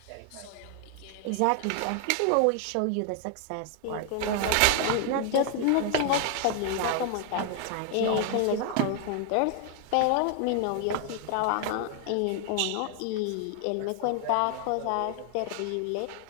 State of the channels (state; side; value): different; both; correlation 0.00